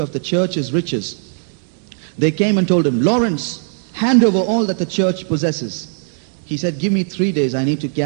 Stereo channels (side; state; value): left; silent; digital silence